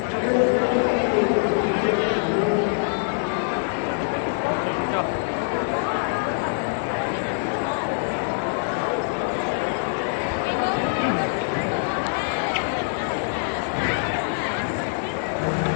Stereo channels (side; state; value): right; silent; 62 dB below the other